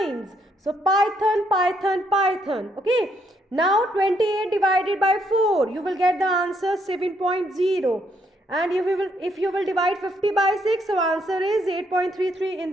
So Python, Python, Python. Okay. Now 28 divided by 4, you will get the answer 7.0. And if you will divide 50 by 6, so answer is 8.33 in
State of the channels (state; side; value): normal; both; correlation 0.73